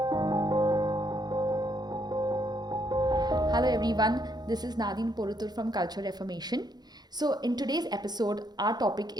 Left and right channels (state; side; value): late; left; 0.20 ms